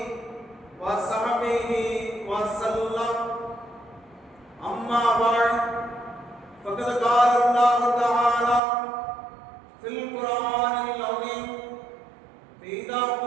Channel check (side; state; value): left; drops out; at 8.6 s